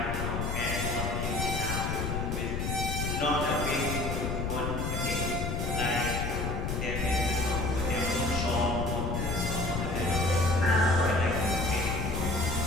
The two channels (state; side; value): noise; left; rumble, 1 dB below the sound